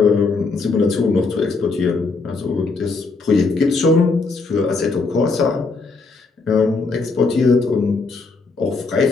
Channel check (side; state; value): right; quieter; 4.1 dB